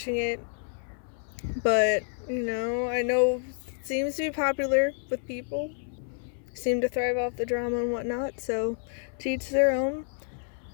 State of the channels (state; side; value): silent; right; 59 dB below the other